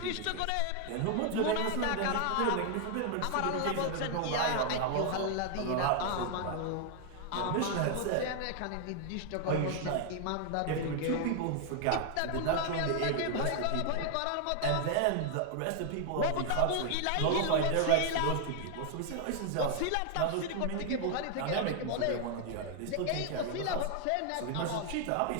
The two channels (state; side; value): different; both; correlation 0.00